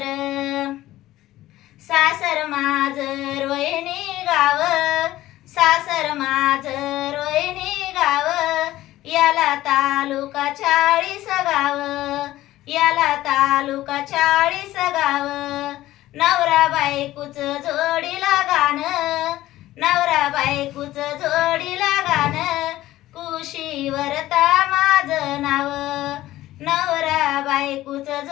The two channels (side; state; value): right; quieter; 15.4 dB